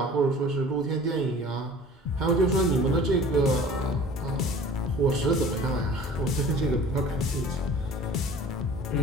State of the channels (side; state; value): both; normal; correlation 0.45